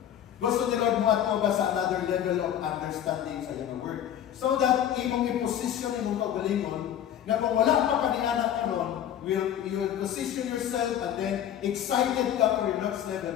Gusto ni Lord mo at ba sa another level of understanding sa iyong word. So that imong i-position imong kaugalingon, na kung wala pa ka ni anak karon, you will position yourself and then excited ka for your next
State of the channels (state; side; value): quieter; right; 10.4 dB